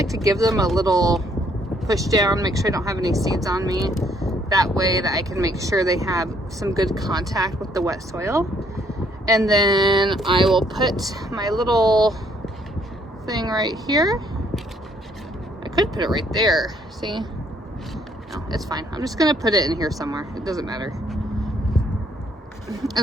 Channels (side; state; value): both; normal; correlation 0.67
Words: to give them a little push down, make sure I don't have any seeds on me. That way that I can make sure they have some good contact with the wet soil. And then I will put my little thing right here. I could put it right there, see? No, it's fine. I'm just gonna put it in here somewhere. It doesn't matter.